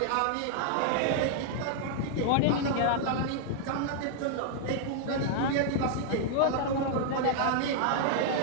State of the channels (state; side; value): different; both; correlation -0.01